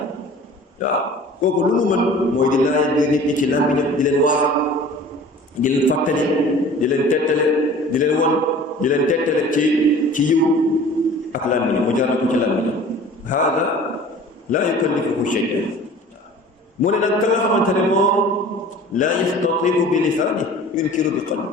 kooku lu mu mën mooy di laaj biir nit ñi ci làmmiñam di leen waar di leen fàttali di leen tettale di leen won di leen tettale ci yiw ak làmmiñam mu jaar ko ci làmmiñam haada laa yukallifuhu shay'an mu ne nag ka nga xamante ne moom laa yastatii'u bi lisaani yunkiru bi qalbi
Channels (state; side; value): normal; both; correlation 0.45